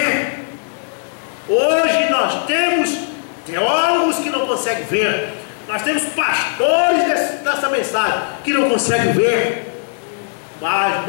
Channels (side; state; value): right; silent; digital silence